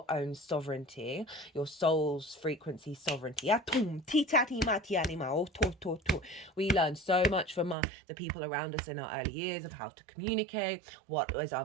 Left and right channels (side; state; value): left; drops out; at 7.8 s